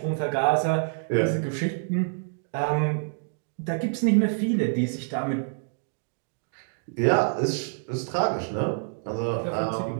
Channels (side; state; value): left; silent; digital silence